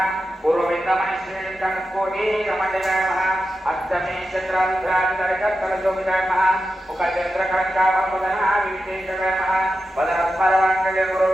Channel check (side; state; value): both; normal; correlation 0.90